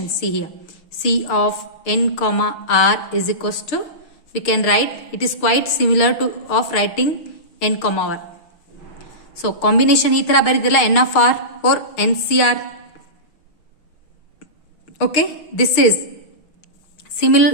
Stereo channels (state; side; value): late; right; 6.5 ms